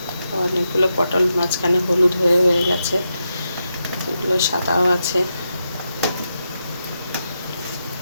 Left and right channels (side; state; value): both; inverted; correlation -0.86